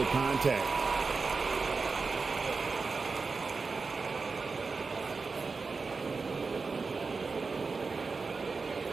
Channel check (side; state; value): left; quieter; 4.4 dB